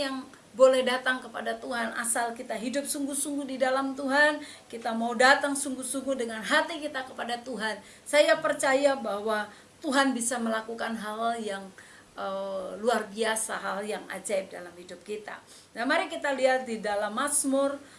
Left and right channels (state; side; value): identical; both; correlation 1.00